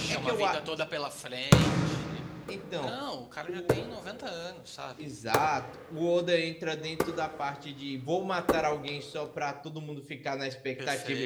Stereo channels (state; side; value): identical; both; correlation 1.00